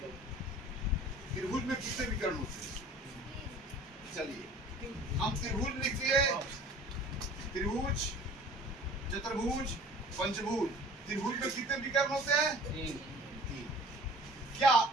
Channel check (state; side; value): normal; both; correlation 0.47